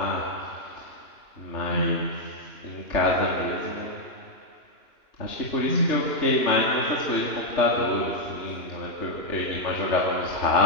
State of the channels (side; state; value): right; late; 2.9 ms